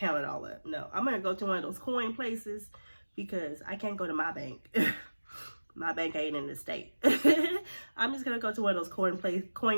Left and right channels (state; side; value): inverted; both; correlation -1.00